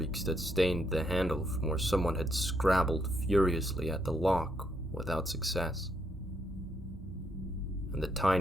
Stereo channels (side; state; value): both; normal; correlation 0.75